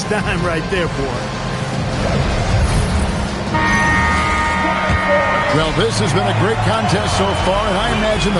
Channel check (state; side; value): identical; both; correlation 1.00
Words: dime right there, boy. Well, this has been a great contest so far, and I imagine